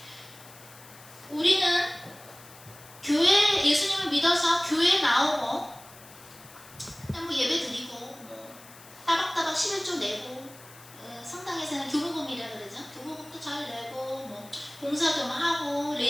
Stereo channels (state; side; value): noise; left; hiss, 20 dB below the sound